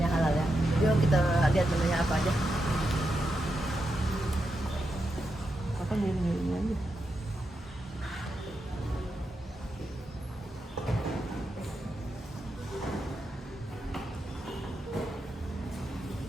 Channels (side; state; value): both; normal; correlation 0.86